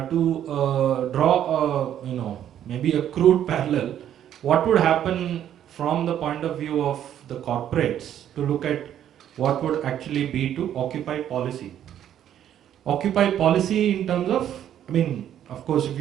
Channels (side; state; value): left; quieter; 10.5 dB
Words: draw maybe a crude parallel, what would happen from the point of view of the corporates to look at what would actually be to Occupy policy. Occupy policy in terms of, of course, if